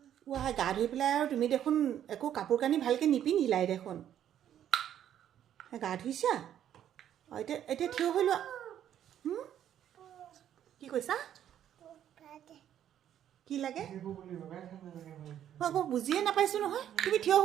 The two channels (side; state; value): left; quieter; 10.5 dB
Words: ৱাই গা ধুই পেলাই আৰু তুমি দেখোন একো কাপোৰ কানি ভালকৈ নিপিন্ধিলাই দেখোন গা ধুইছা অঁ এতিয়া এতিয়া থিয় হৈ লোৱা কি কৈছা কি লাগে মই আকৌ বুজিয়ে নাপাইছোঁ নহয় তুমি থিয়